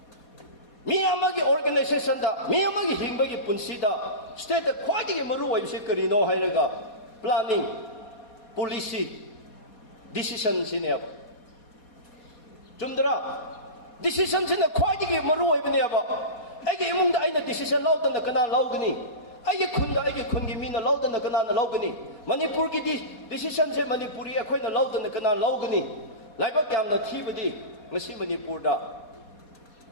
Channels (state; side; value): late; right; 4.2 ms